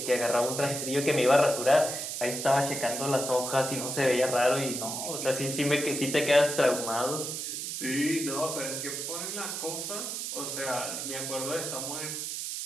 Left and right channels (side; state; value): right; noise; hiss, 4 dB below the sound